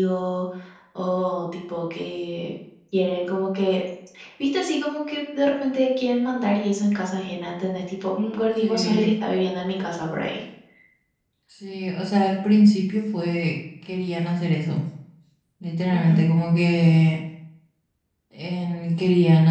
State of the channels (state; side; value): identical; both; correlation 1.00